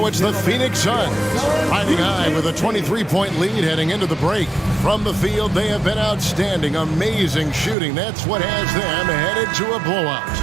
it's the Phoenix Suns riding high with a 23-point lead heading into the break. From the field, they have been outstanding, amazing shooting. That's what has them headed to a blowout.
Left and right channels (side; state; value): left; drops out; at 7.8 s